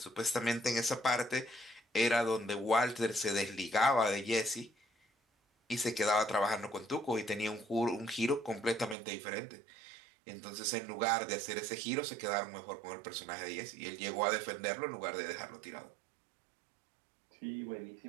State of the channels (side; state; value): left; drops out; at 9.0 s